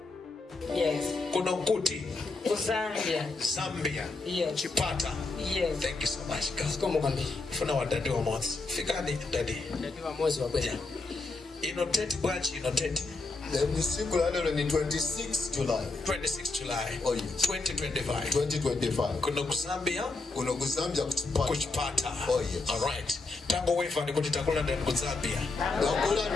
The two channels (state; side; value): quieter; right; 3.5 dB